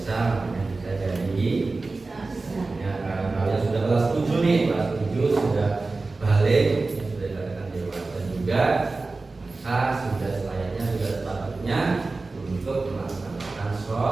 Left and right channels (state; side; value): quieter; left; 3.6 dB